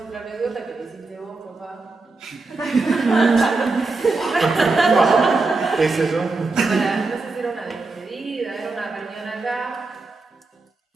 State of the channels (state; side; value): quieter; left; 3.6 dB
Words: anécdota que le hiciste vos, papá. ¿Qué es eso? No sé si era una despedida, era una reunión acá,